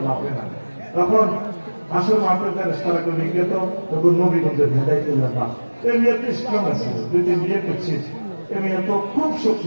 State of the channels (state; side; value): inverted; both; correlation -1.00